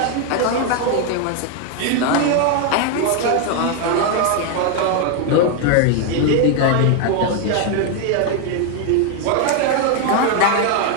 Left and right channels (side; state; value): both; different; correlation 0.01